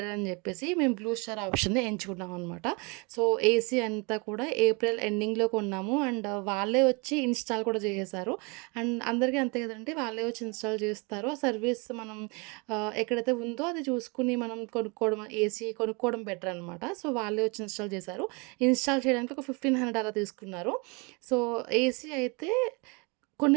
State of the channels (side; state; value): left; quieter; 30.2 dB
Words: అని చెప్పేసి మేము బ్లూ స్టార్ ఆప్షన్‌ని ఎంచుకున్నాం అనమాట. సో, ఏసీ అంతా కూడా ఏప్రిల్ ఎండింగ్‌లో కొన్నాము. అండ్ వాళ్ళే వచ్చి ఇన్‌స్టాల్ కూడా చేసేసారు. అండ్ అందరికీ అంతే కదండీ! వాళ్ళే వచ్చి ఇన్‌స్టాల్ చేస్తారు. ఆ సర్వీస్ మనం ఎక్కడైతే ఉందో అది చూసుకొని మనం కొనుక్కోవడం ఏసీ కొనుక్కోవడం బెటర్ అనమాట. సో, వాళ్ళే వచ్చి ఇన్‌స్టాల్ చేశారు. ఇన్‌స్టాల్ చేయడానికి ఒక 1500 అలా తీసుకున్నారు. సో, ఏసీ అయితే